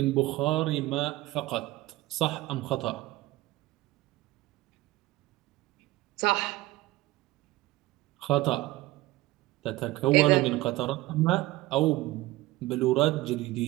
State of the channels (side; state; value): left; quieter; 18.3 dB